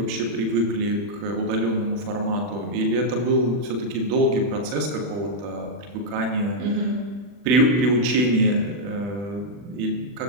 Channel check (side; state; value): left; late; 40 ms